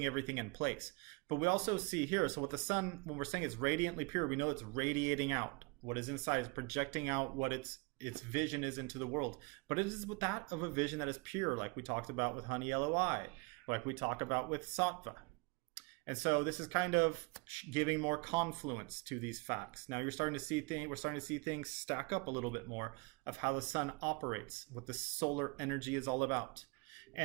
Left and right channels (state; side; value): quieter; left; 29.2 dB